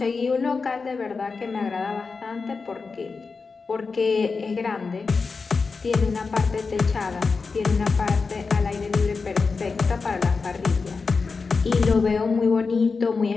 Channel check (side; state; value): right; quieter; 4.6 dB